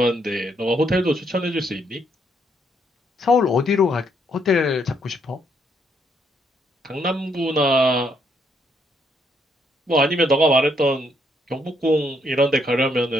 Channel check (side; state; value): both; normal; correlation 0.72